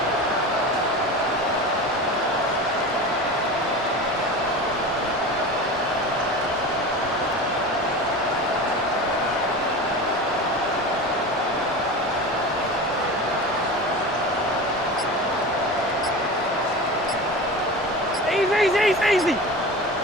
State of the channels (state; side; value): normal; both; correlation 0.30